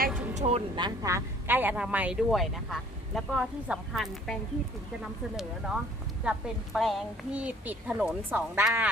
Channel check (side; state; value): both; normal; correlation 0.55